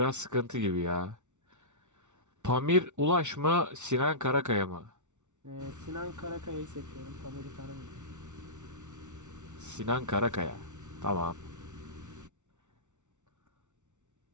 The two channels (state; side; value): late; left; 0.84 ms